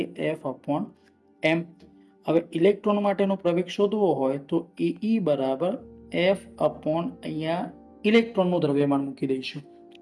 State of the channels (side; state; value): both; identical; correlation 1.00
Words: F/m. હવે ઇલેક્ટ્રોન માટેનો પ્રવેગ શોધવો હોય તો AE બરાબર F/ અહીંયા ઇલેક્ટ્રોનનું દ્રવ્યમાન મૂકી દઈશું,